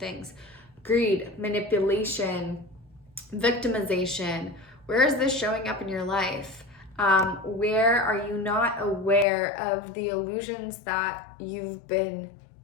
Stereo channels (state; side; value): drops out; right; at 9.2 s